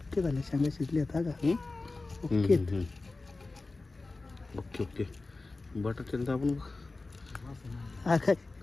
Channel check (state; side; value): quieter; right; 3.4 dB